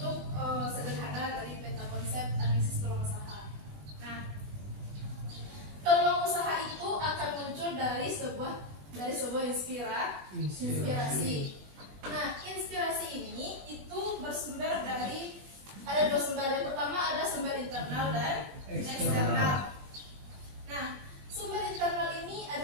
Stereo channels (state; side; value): late; left; 20 ms